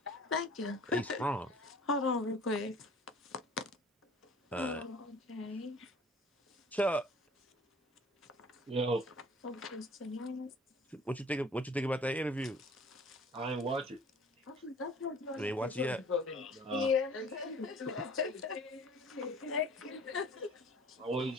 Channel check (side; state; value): both; normal; correlation 0.49